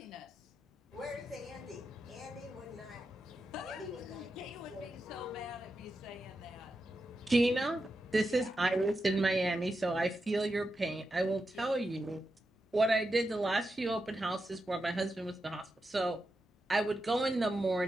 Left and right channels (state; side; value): normal; both; correlation 0.88